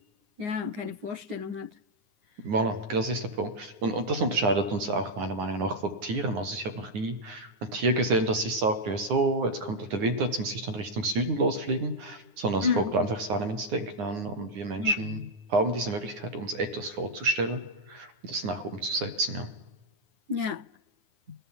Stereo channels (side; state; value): left; late; 9.7 ms